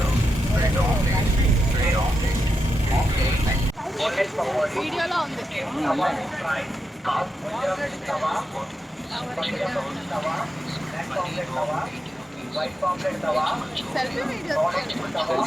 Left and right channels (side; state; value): both; normal; correlation 0.86